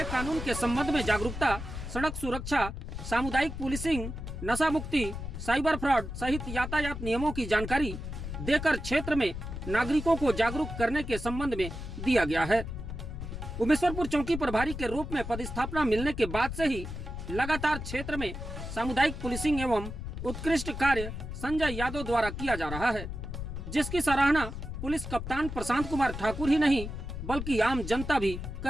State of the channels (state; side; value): noise; left; rumble, 7 dB below the sound